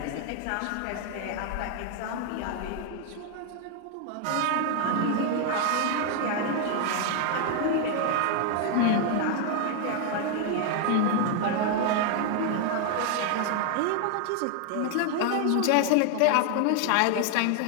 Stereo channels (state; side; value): different; both; correlation 0.00